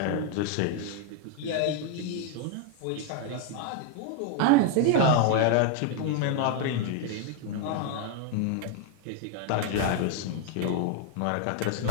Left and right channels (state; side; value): different; both; correlation 0.00